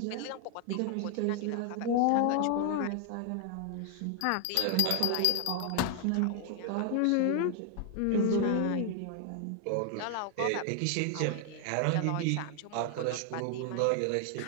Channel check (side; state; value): both; different; correlation 0.00